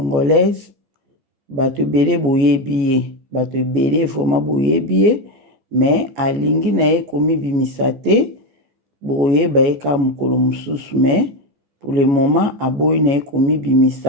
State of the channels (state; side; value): late; left; 14 ms